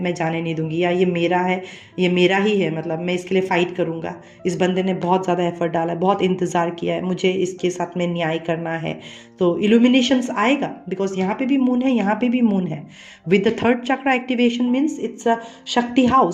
मैं जाने नहीं दूंगी, या ये मेरा है, ये मेरा ही है, मतलब मैं इसके लिए फाइट करूंगा। इस बंदे ने बहुत ज़्यादा एफर्ट डाला है, बहुत इंतज़ार किया है, मुझे इसके साथ में न्याय करना है। तो इल्यूमिनेशंस आएगा, बिकॉज यहाँ पे भी मून है, यहाँ पे भी मून है। With the third chakra activation means it's a शक्ति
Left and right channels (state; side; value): identical; both; correlation 1.00